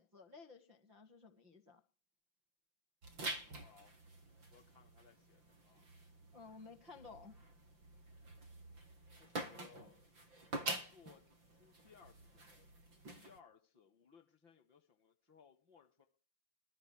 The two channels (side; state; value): left; late; 5.8 ms